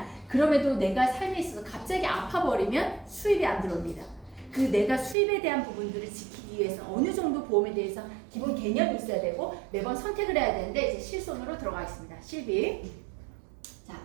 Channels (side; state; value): left; drops out; at 5.2 s